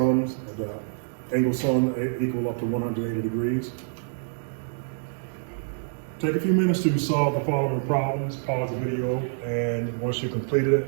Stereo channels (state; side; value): silent; left; 61 dB below the other